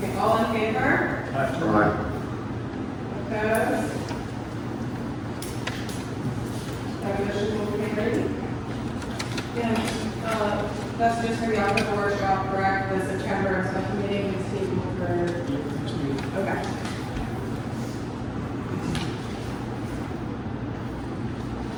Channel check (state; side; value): identical; both; correlation 1.00